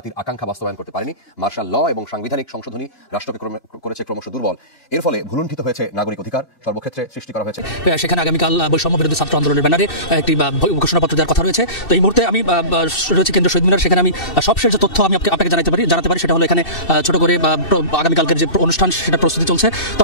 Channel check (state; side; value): late; right; 2.6 ms